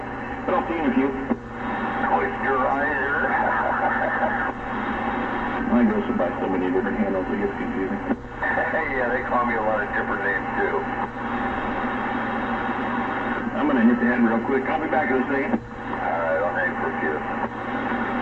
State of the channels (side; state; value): both; identical; correlation 1.00